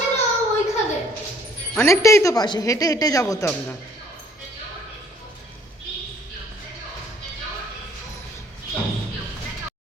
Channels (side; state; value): both; normal; correlation 0.59